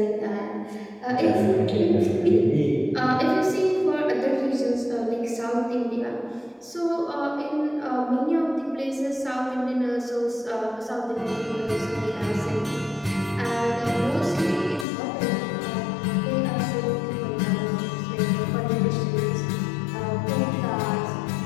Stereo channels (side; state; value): right; drops out; at 14.9 s